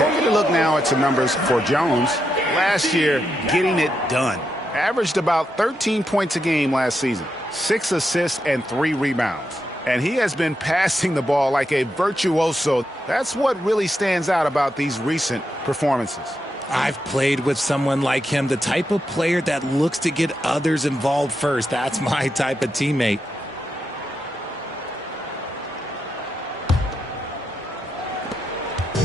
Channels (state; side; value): normal; both; correlation 0.84